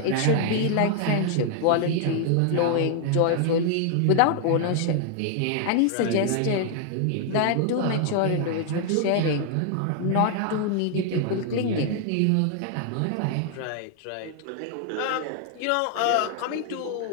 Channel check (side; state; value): both; different; correlation 0.00